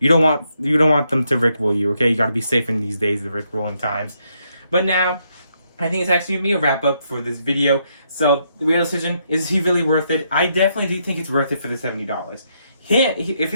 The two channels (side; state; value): both; inverted; correlation -0.77